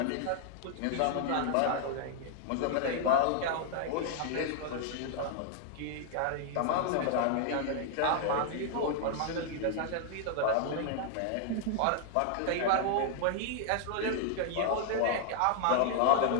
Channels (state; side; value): different; both; correlation 0.00